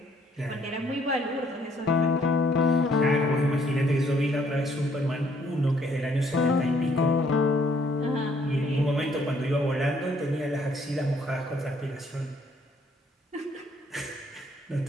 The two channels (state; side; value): normal; both; correlation 0.65